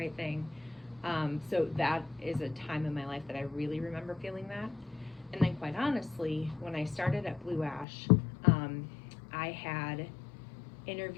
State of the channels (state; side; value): drops out; right; at 7.9 s